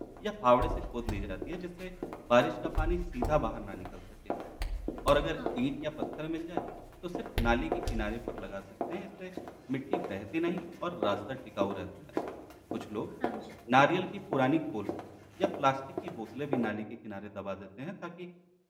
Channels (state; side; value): identical; both; correlation 1.00